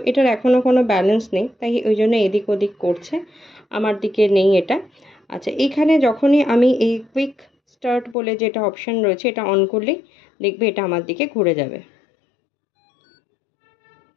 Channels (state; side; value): drops out; right; at 8.2 s